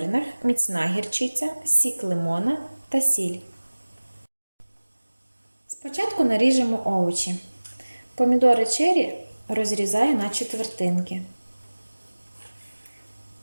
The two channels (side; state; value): both; inverted; correlation -1.00